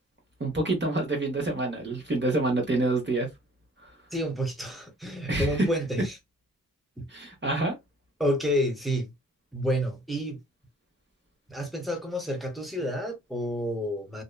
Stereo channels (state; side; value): normal; both; correlation 0.55